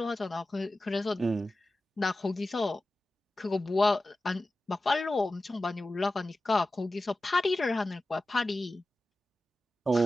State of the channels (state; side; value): normal; both; correlation 0.94